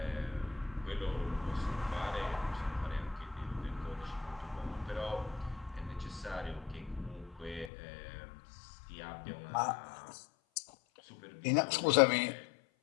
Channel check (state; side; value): drops out; right; at 7.7 s